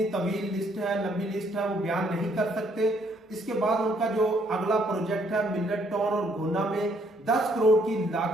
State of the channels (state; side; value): normal; both; correlation 0.68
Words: तवील लिस्ट है, लंबी लिस्ट है, वो बयान नहीं कर सकते। इसके बाद उनका जो अगला प्रोजेक्ट है मिलट टाउन और घोना में 10 करोड़ की